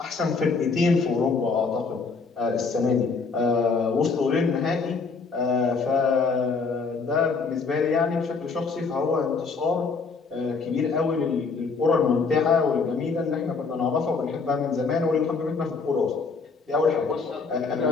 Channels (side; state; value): right; quieter; 4.7 dB